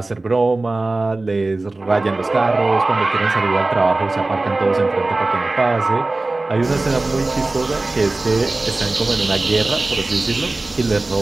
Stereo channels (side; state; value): left; quieter; 3.1 dB